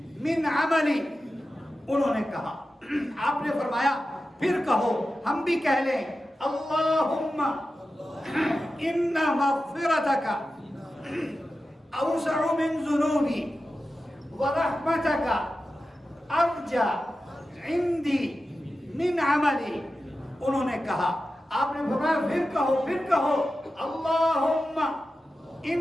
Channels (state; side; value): normal; both; correlation 0.92